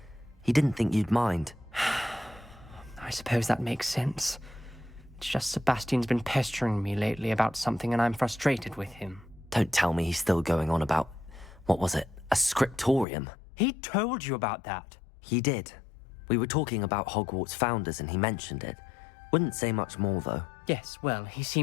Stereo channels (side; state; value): right; drops out; at 13.1 s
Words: He didn't think you'd mind. I suppose that makes sense. It's just Sebastian's been pestering me lately about something and I'm frustrated with him. Don't tell me he's still going on about, what was it, a scriptorium? He told you about that. He did. We were talking about Hogwarts founders and he mentioned it. Wouldn't say much more, though. Yes, well, he